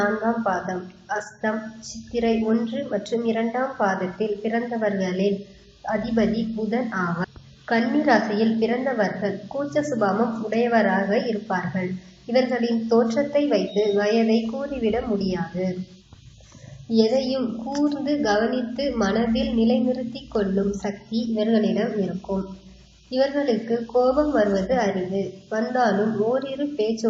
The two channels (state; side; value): identical; both; correlation 1.00